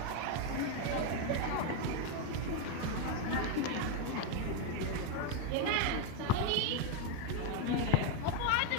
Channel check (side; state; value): both; different; correlation 0.02